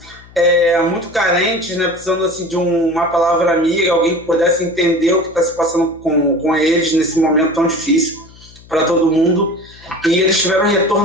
muito carentes, né, precisando assim, de uma palavra amiga, alguém que pudesse entender o que está se passando com eles nesse momento tão difícil para todo mundo. E eles tiveram um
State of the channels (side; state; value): left; noise; hum, 23 dB below the sound